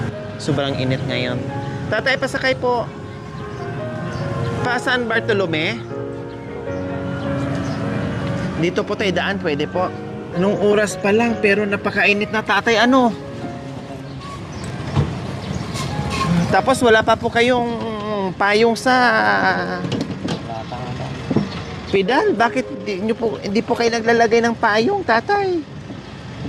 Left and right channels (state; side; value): identical; both; correlation 1.00